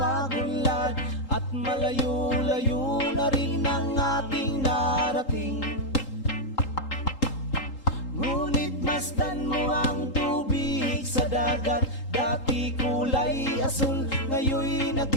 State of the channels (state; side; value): late; right; 3.8 ms